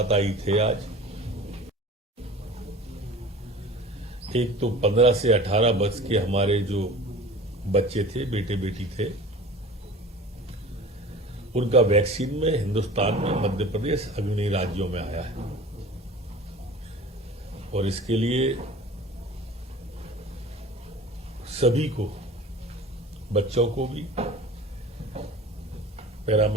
थे आज। एक तो 15 से 18 वर्ष के हमारे जो बच्चे थे, बेटे बेटी थे, उनका वैक्सीन में हिंदुस्तान में मध्य प्रदेश अग्रणी राज्यों में आया है और इसके लिए सभी को, बच्चों को भी,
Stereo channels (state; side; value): normal; both; correlation 0.41